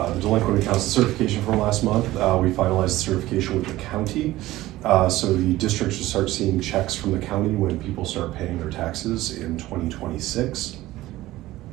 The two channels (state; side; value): quieter; left; 16.7 dB